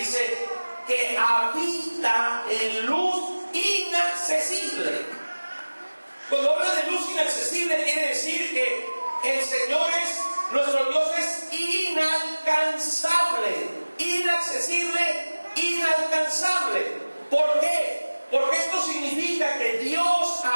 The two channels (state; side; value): inverted; both; correlation -1.00